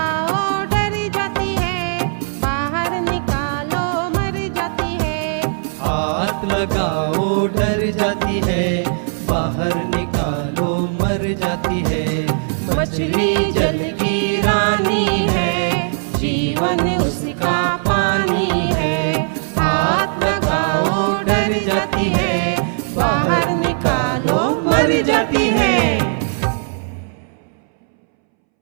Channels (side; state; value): left; silent; 67 dB below the other